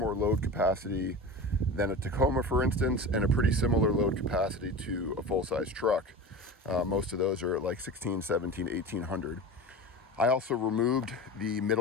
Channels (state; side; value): normal; both; correlation 0.31